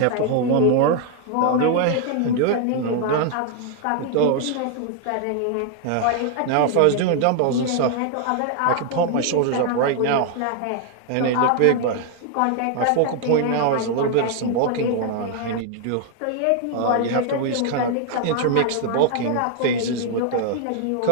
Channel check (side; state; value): both; different; correlation 0.00